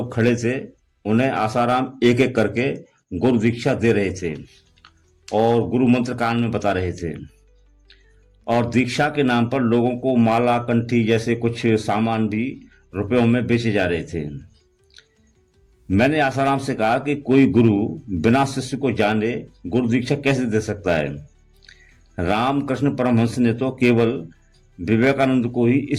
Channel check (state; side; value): identical; both; correlation 1.00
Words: खड़े थे। उन्हें आसाराम एक एक करके गुरु दीक्षा दे रहे थे और गुरु मंत्र कान में बता रहे थे। और दीक्षा के नाम पर लोगों को माला, कंठी जैसे कुछ सामान भी रुपयों में बेचे जा रहे थे। मैंने आसाराम से कहा कि कोई गुरु बिना शिष्य को जाने गुरु दीक्षा कैसे दे सकता है। रामकृष्ण परमहंस ने तो केवल विवेकानंद को ही